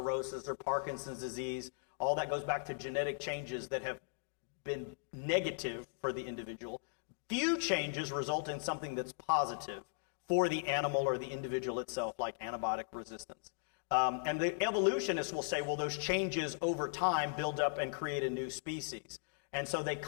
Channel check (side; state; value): right; silent; digital silence